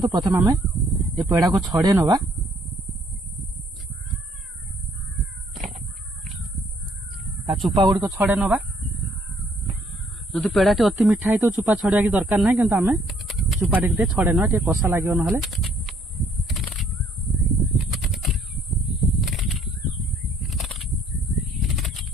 प्रथम हमें ये पेड़ा को छड़े नबा। ता चुपा गुडी को छड़े नबा। जदि पेड़ाटी अति मिठा है तो चुपा छड़िया की दरकार नहीं किंतु हमें चुपा टे छड़े नबा टे कसा लागियो नहले।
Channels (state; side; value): normal; both; correlation 0.65